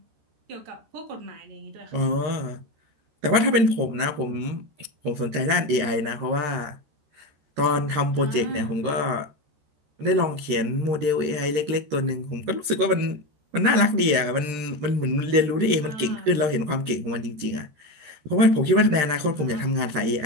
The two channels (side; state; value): left; late; 13 ms